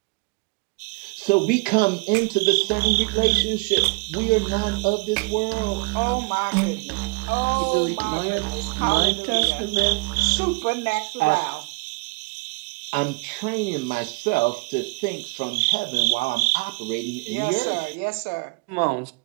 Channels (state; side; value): quieter; left; 30.4 dB